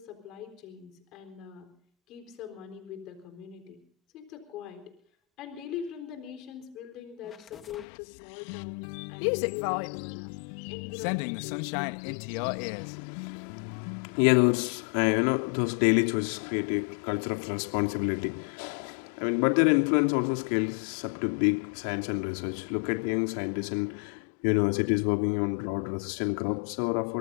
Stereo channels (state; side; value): drops out; right; at 7.9 s